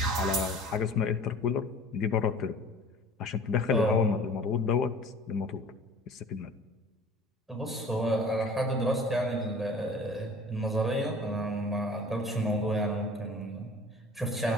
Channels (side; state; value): both; normal; correlation 0.45